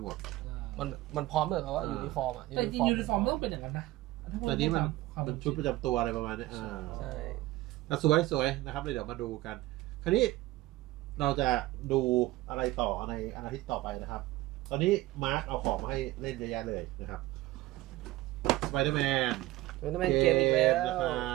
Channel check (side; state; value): left; quieter; 17.5 dB